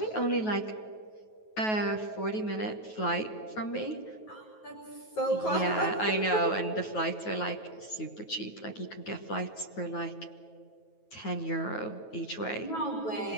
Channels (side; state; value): right; late; 9.3 ms